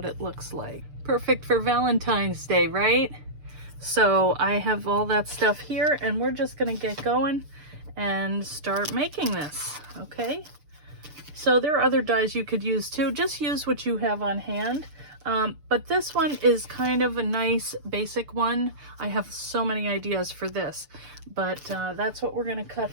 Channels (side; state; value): left; late; 6.8 ms